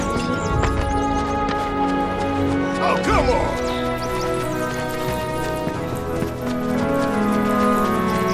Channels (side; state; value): both; identical; correlation 1.00